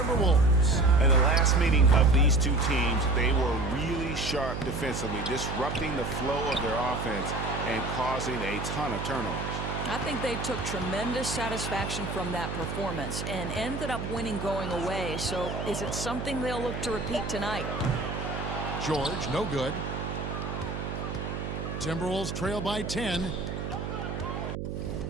In the last meeting of these two teams, they were really sharp defensively, disrupting the flow of their offense and causing a ton of turnovers. I think they took tremendous satisfaction from that performance and ended up winning going away. So is it something they'll look to repeat tonight? George, no good. Timberwolves trail by 10.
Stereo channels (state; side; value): noise; right; hum, 5 dB below the sound